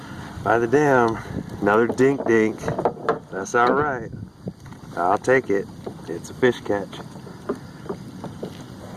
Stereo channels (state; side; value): identical; both; correlation 1.00